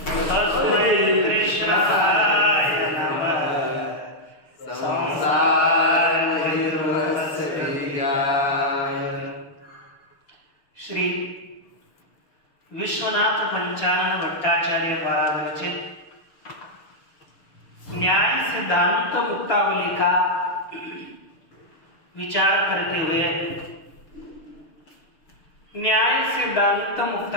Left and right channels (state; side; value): late; right; 6.6 ms